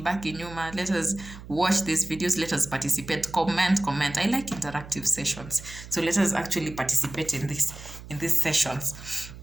in Yuma, let us watch these videos, let us participate, comment. I like interactive sessions, so let us actually participate in these sessions.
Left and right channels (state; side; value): noise; right; hum, 15 dB below the sound